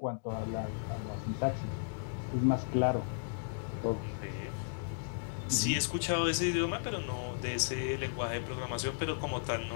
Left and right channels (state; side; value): silent; right; digital silence